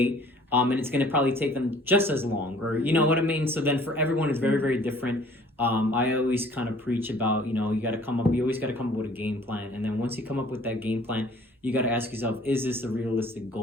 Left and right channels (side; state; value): both; normal; correlation 0.54